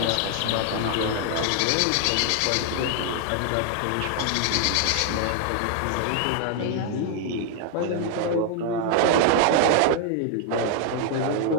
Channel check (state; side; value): different; both; correlation 0.00